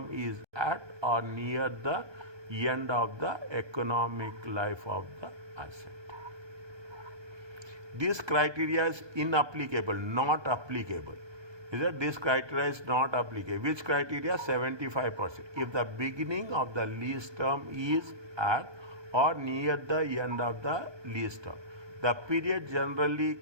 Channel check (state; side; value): late; left; 1.2 ms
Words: is at or near the end of the economic life of the asset. This criteria is inapplicable, not applicable. Is that this criteria is not applicable? Which criteria? 75%. If the beginning of the lease term is at or near the end of the lease term. The period generally